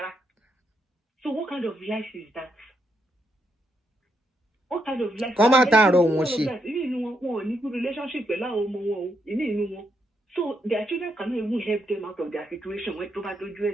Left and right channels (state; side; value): normal; both; correlation 0.79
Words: what kind of life is that? What kind of life? Come out and run one good relationship. So their children cannot even help them out of their situation when to do.